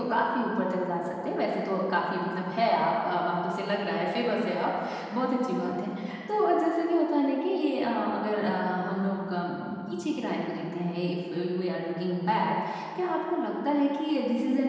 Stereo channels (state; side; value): identical; both; correlation 1.00